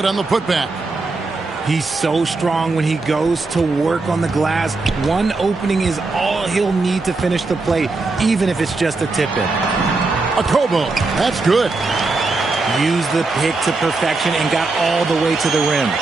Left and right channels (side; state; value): left; quieter; 3.6 dB